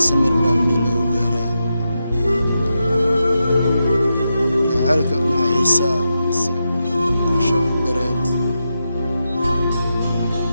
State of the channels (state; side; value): inverted; both; correlation -0.87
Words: samir baa meel lagu gaaraa jacaylka maxiisaa mise qosho dareed